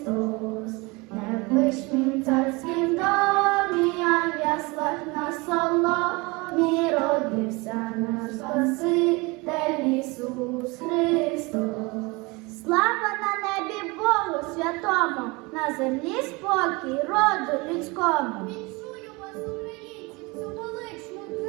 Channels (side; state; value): left; quieter; 25.7 dB